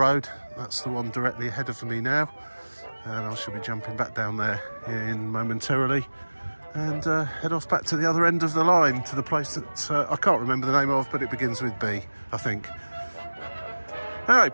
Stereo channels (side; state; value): both; inverted; correlation -1.00